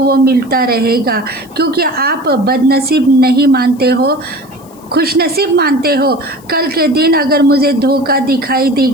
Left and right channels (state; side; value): noise; left; hiss, 27 dB below the sound